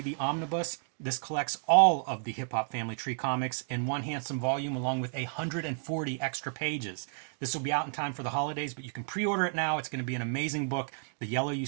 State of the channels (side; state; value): left; silent; 57 dB below the other